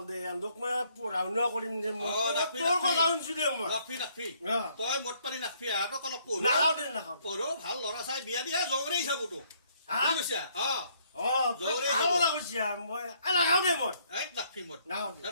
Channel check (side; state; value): both; inverted; correlation -0.67